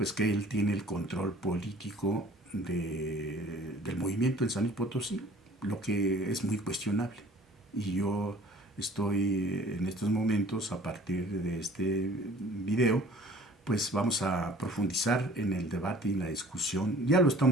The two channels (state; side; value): normal; both; correlation 0.51